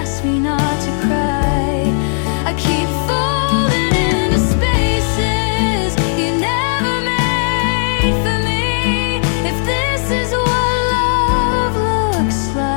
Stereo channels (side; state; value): right; silent; 69 dB below the other